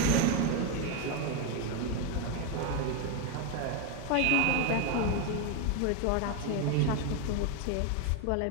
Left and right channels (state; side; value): different; both; correlation 0.02